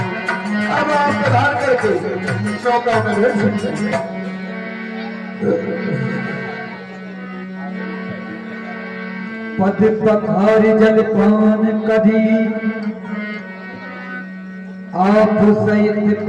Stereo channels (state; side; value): identical; both; correlation 1.00